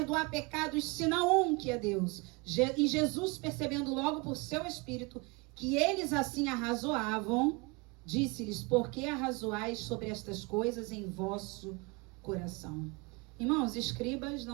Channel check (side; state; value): left; quieter; 27.8 dB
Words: pecados senão um, que é Deus? E Jesus, percebendo logo por seu espírito que eles assim arrazoavam, disse-lhes: por que arrazoais sobre estas coisas em vosso coração? Irmãos, escribas